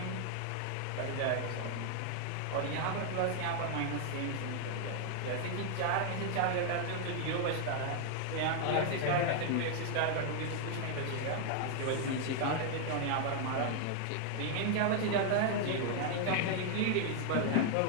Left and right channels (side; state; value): both; different; correlation 0.00